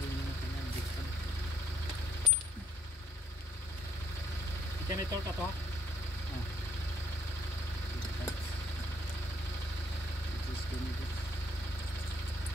yung kanyang brake pad. Janitor ka to ha? It is janitor.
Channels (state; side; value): normal; both; correlation 0.70